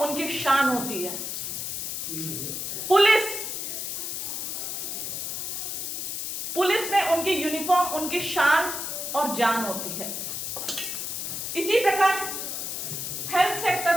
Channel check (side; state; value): left; noise; hiss, 4 dB below the sound